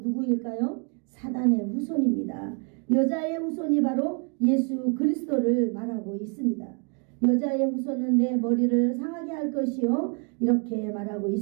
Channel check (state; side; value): quieter; left; 36.7 dB